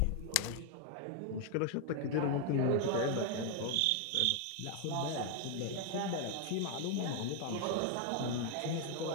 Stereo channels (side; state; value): both; different; correlation 0.00